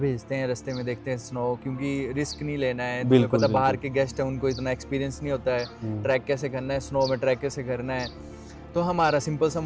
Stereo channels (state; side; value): identical; both; correlation 1.00